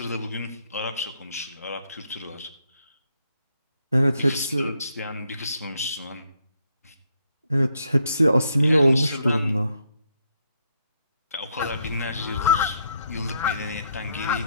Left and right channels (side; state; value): both; inverted; correlation -0.74